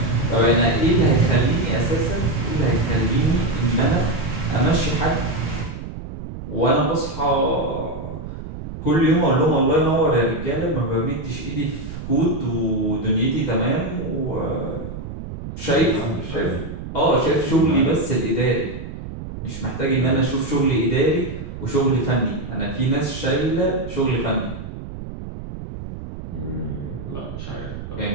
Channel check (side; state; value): right; noise; rumble, 10 dB below the sound